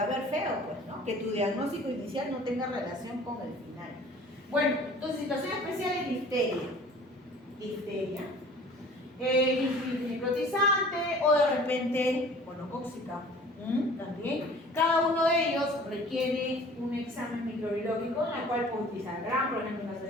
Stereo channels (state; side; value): normal; both; correlation 0.48